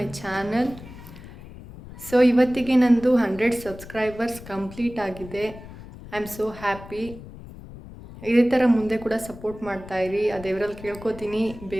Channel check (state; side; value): noise; left; rumble, 16 dB below the sound